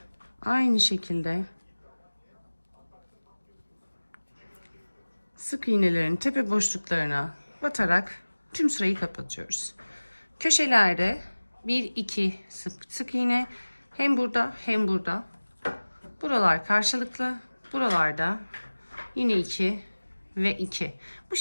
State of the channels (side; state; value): both; inverted; correlation -1.00